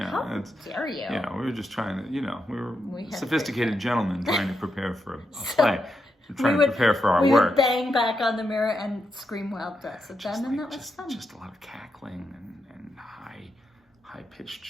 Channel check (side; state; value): both; normal; correlation 0.84